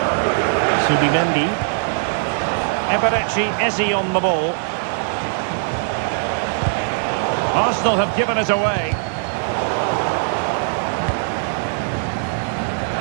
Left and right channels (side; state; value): left; silent; digital silence